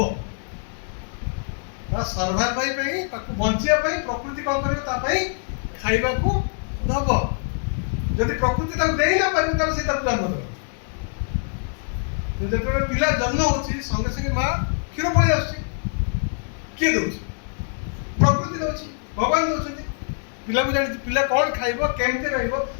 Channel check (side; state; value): right; silent; 62 dB below the other